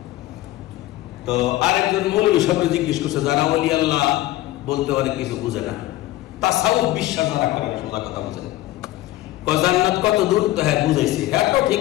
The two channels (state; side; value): quieter; right; 16.2 dB